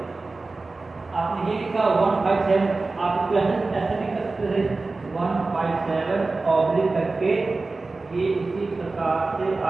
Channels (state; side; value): quieter; left; 3.6 dB